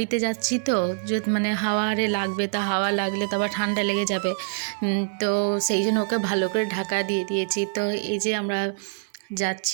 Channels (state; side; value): silent; left; 62 dB below the other